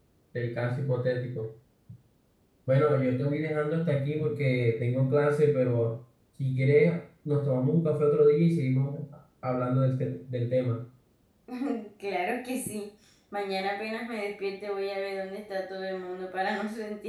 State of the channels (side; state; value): both; identical; correlation 1.00